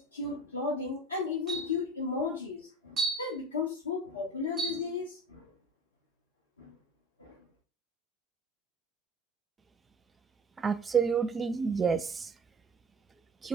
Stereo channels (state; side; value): normal; both; correlation 0.38